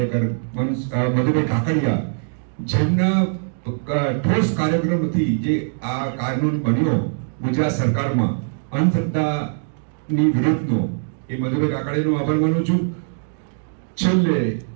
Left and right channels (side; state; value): left; silent; digital silence